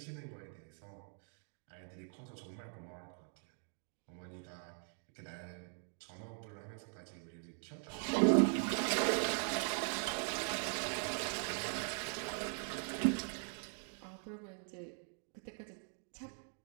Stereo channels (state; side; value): silent; left; 50 dB below the other